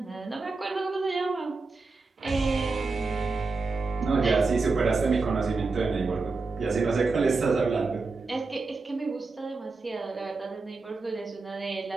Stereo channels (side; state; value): left; quieter; 3.9 dB